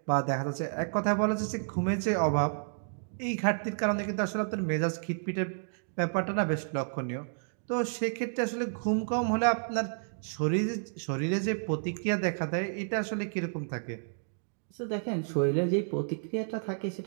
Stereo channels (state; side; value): silent; left; digital silence